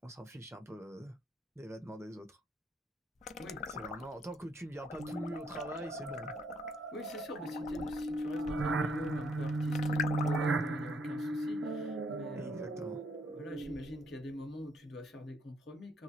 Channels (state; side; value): normal; both; correlation 0.70